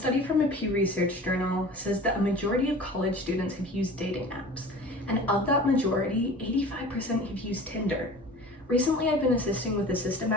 from a Pew Research journal says that a majority of college students have used dating apps, and of that majority, 85% have used Tinder. Recently, I've been assisting with a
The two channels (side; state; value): both; normal; correlation 0.40